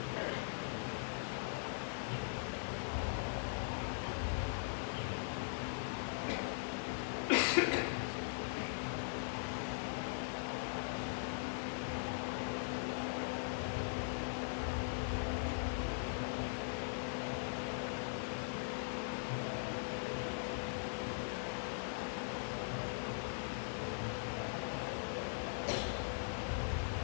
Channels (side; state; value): right; silent; digital silence